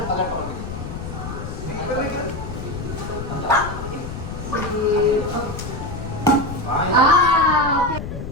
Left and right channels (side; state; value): left; noise; rumble, 7 dB below the sound